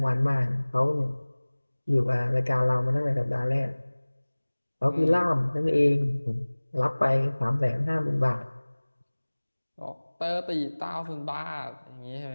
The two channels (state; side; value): inverted; both; correlation -1.00